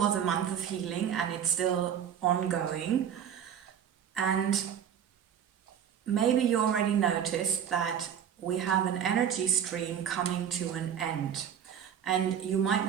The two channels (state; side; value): quieter; left; 8.8 dB